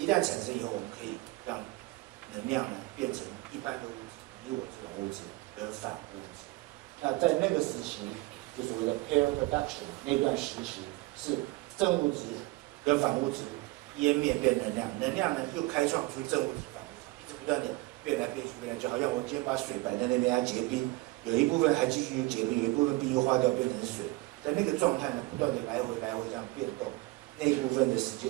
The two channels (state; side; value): quieter; left; 21.7 dB